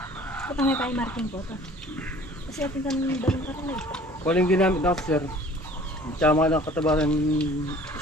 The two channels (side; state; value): both; normal; correlation 0.50